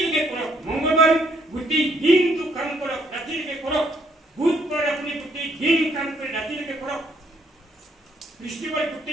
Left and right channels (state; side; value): normal; both; correlation 0.69